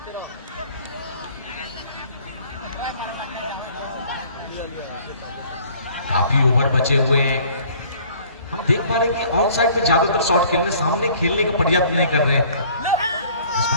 काफी ओवर बचे हुए हैं। हम देख पा रहे हैं कि ऑन साइड में ज्यादातर शॉट खेलने, सामने खेलने का प्रयास नहीं कर रहे हैं। इस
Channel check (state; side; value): inverted; both; correlation -0.54